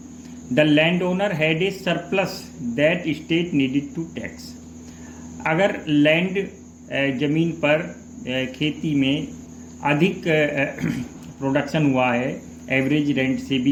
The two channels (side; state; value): both; identical; correlation 1.00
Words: the land owner had a surplus that state needed to tax. अगर लैंड जमीन पर खेती में अधिक प्रोडक्शन हुआ है एवरेज रेंट से